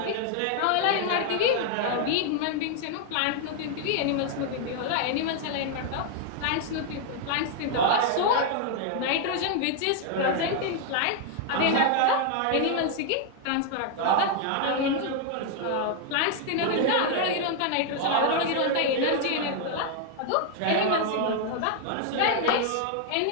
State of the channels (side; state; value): both; different; correlation 0.00